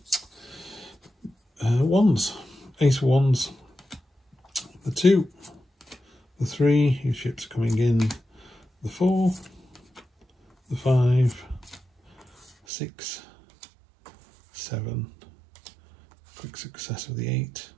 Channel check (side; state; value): left; drops out; at 12.5 s